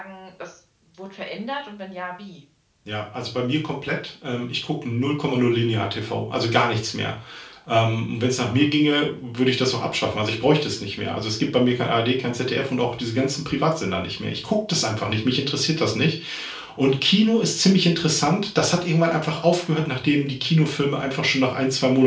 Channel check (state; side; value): identical; both; correlation 1.00